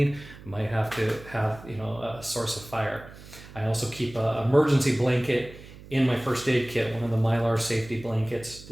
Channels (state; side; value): noise; right; hum, 18 dB below the sound